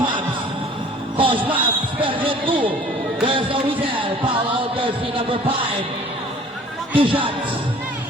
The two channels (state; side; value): normal; both; correlation 0.50